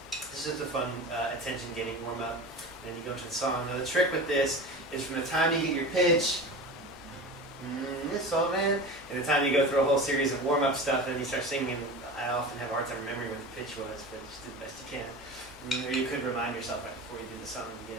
This is just a fun attention-getting warm-up. And then you go into the song. Now the trick with this is from the time you get your pitch, this all man, and the time you go through a whole series of warm-up stuff, and then you start singing. I often have a hard time remembering what the pitch was, but just do the best you can. Or you could remind yourself right before you do the song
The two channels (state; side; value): normal; both; correlation 0.31